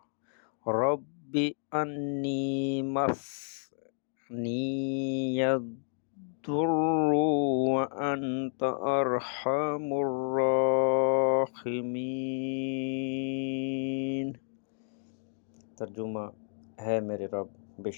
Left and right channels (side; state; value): right; silent; 57 dB below the other